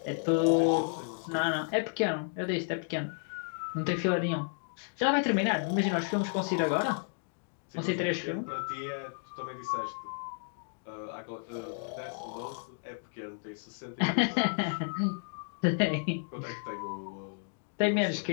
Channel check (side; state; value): right; silent; digital silence